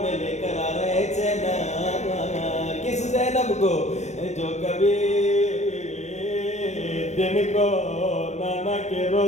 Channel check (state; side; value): late; right; 0.33 ms